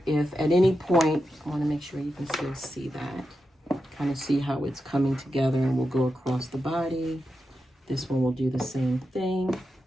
if at any point, I want to make sure you can still see that, kind of see how it's coming together, and we'll go across the body. This one will do the same thing.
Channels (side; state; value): both; normal; correlation 0.89